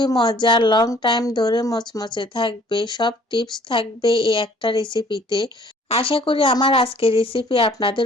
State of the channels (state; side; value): normal; both; correlation 0.56